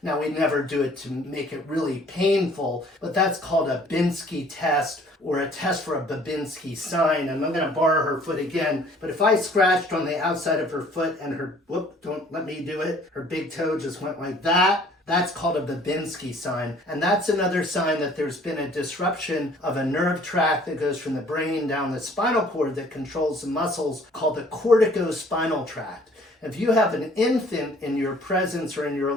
Now, we never do it to make it really painful, but that's called a Binsky test, or a test for a Babinski sign. And I'm going to borrow her foot again. But if I scratched on the outside of her foot and her, whoop, don't let me do it, her big toe just went like that, that's called a Babinski sign. And that's another sign that there's been a disruption of a nerve tract that goes from the brain down the spinal cord that controls the muscles, called the corticospinal tract. If you have an infant in your presence or in your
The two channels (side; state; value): both; normal; correlation 0.56